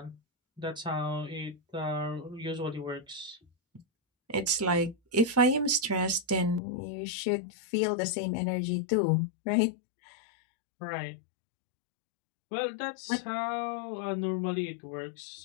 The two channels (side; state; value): right; drops out; at 6.6 s